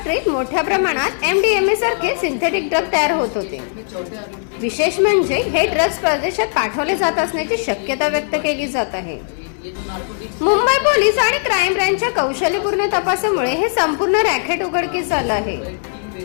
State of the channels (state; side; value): silent; right; digital silence